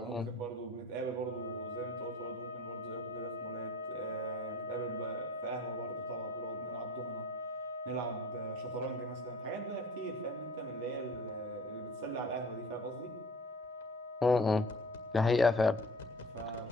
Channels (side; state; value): both; normal; correlation 0.43